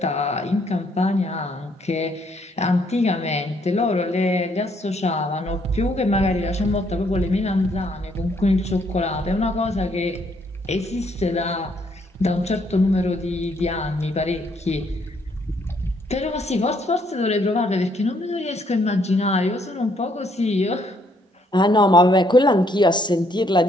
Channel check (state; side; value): normal; both; correlation 0.69